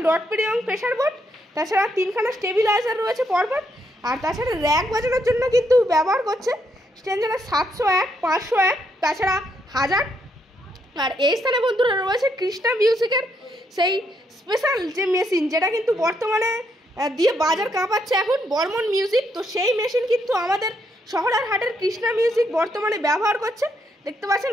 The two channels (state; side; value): normal; both; correlation 0.76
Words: ডট পিডি এবং প্রেশার বোর্ড। তাছাড়া 3খানা স্টেবিলাইজার রয়েছে পরপর। আর তাছাড়া র্যাক বাজানোর জন্য কিন্তু ব্যবহার করছে স্ট্যান্ডার্ড 701, 501, তাছাড়া 1000। আর এই স্থানে বন্ধুরা রয়েছে কৃষ্ণা মিউজিকের সেই স্পেশাল যে মেশিন যেটা কিন্তু বর্তমানে দিয়ে বাজার কাঁপাচ্ছে এখন বর্মন মিউজিক। তো সেই মেশিন কিন্তু আমাদের শহরের হাটের কৃষ্ণা মিউজিক বর্তমানে ব্যবহার করছে। দেখতে পাচ্ছেন